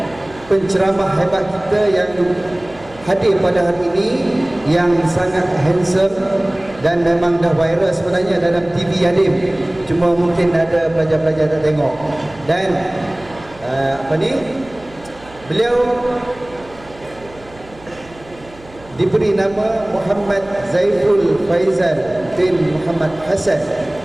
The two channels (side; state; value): right; noise; hum, 23 dB below the sound